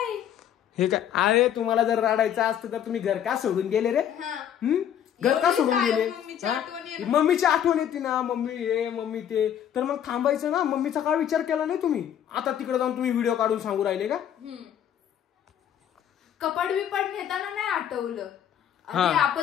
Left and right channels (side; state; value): right; quieter; 9.8 dB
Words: काय अरे तुम्हाला जर रडायचं असतं तर तुम्ही घर का सोडून गेले रे. घर का सोडून गेले. मम्मीची आठवण येते ना, मम्मी हे मम्मी ते, तर मग थांबायचं ना. मम्मीचा काय विचार केला नाही तुम्ही. आता तिकडे जाऊन तुम्ही व्हिडिओ काढून सांगू राहिले का. कपाट बिपाट नेताना नाही आठवलं.